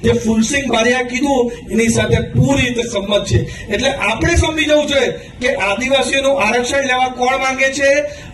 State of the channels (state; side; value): identical; both; correlation 1.00